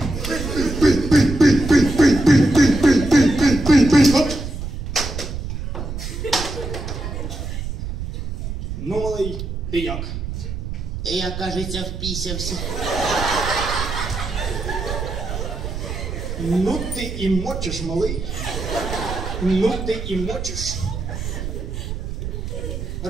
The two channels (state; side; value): noise; right; rumble, 6 dB below the sound